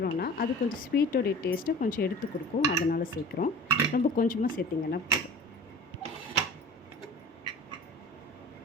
அது கொஞ்சம் ஸ்வீட்டோடைய டேஸ்ட்டை கொஞ்சம் எடுத்து கொடுக்கும், அதனால் சேர்க்குறோம். ரொம்ப கொஞ்சமாக சேர்த்திங்கன்னா போதும்.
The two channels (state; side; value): normal; both; correlation 0.39